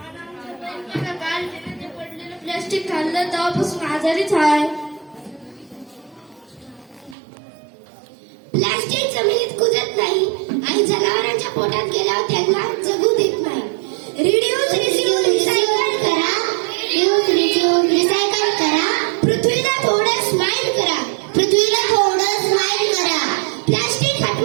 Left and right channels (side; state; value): left; drops out; at 7.2 s